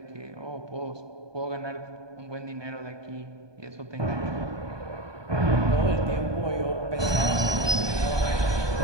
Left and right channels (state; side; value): late; left; 1.2 ms